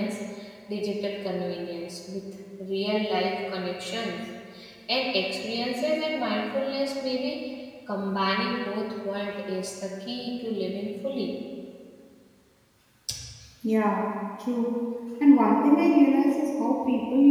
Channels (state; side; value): identical; both; correlation 1.00